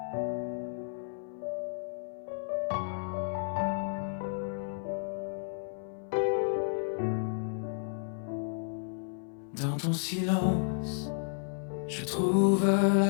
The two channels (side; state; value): right; silent; 55 dB below the other